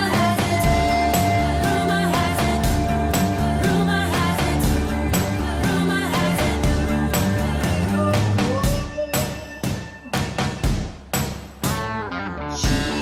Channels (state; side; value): identical; both; correlation 1.00